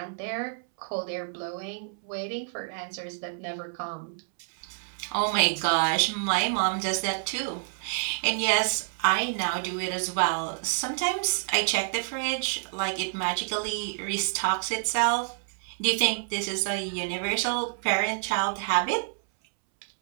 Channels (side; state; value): left; silent; 59 dB below the other